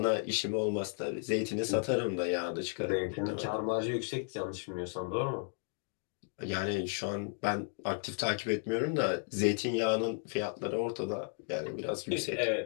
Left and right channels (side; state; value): right; silent; digital silence